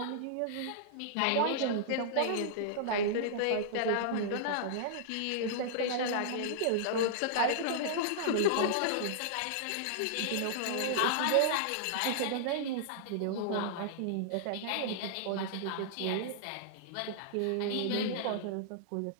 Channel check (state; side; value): different; both; correlation -0.02